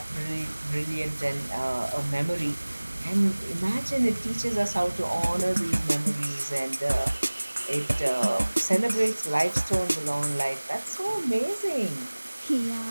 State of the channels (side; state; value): both; inverted; correlation -1.00